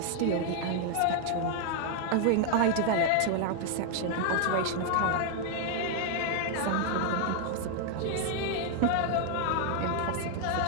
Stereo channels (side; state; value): both; different; correlation 0.00